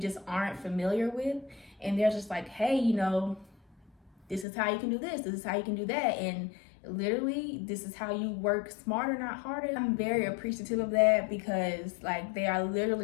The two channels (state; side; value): drops out; right; at 4.5 s